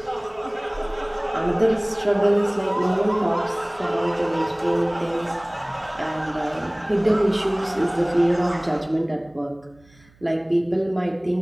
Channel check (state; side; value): noise; right; hum, 29 dB below the sound